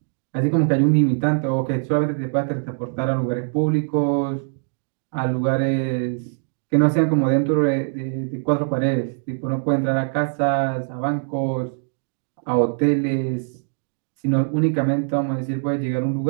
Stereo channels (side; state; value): left; silent; digital silence